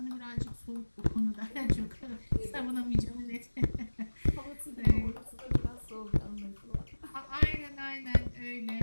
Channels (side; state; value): both; inverted; correlation -1.00